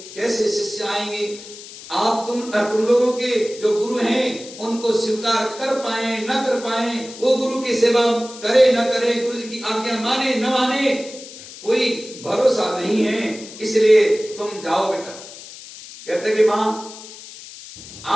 कैसे शिष्य आएंगे, आप तुम लोगों के जो गुरु हैं उनको स्वीकार कर पाए न कर पाए, वो गुरु की सेवा करे न करे, गुरु जी की आज्ञा माने न माने, कोई भरोसा नहीं है। इसलिए तुम जाओ बेटा। कहते कि मां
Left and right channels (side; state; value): left; noise; hiss, 15 dB below the sound